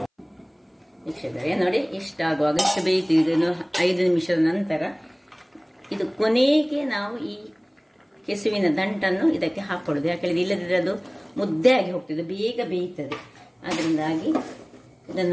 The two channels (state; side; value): identical; both; correlation 1.00